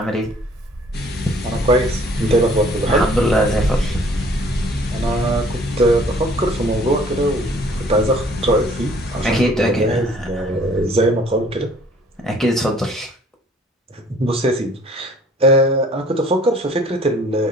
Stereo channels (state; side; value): normal; both; correlation 0.56